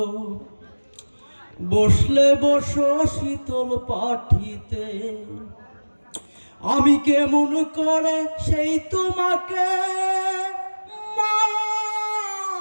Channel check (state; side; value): inverted; both; correlation -1.00